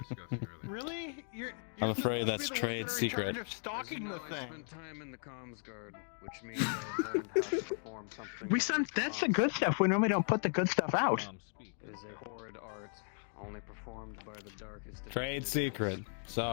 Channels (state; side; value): silent; right; 53 dB below the other